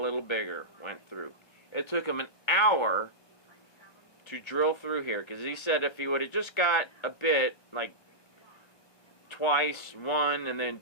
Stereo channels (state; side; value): late; right; 1.3 ms